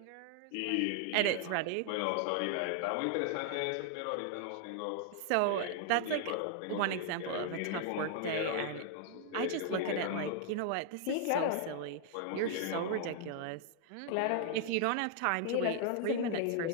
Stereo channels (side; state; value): both; different; correlation 0.00